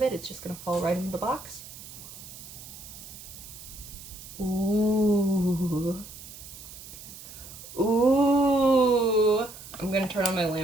it. It's just gonna fall right into the box. Ooh. Ooh. I'm gonna turn on my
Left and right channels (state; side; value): noise; right; hiss, 15 dB below the sound